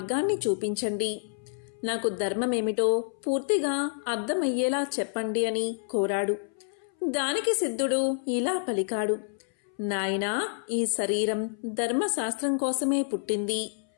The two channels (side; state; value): right; silent; 59 dB below the other